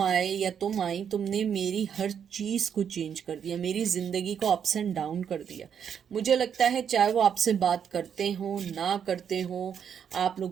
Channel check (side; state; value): left; quieter; 8.0 dB